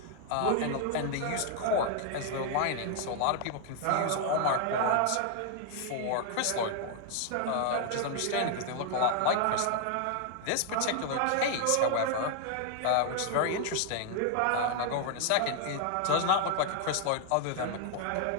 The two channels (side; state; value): both; different; correlation 0.00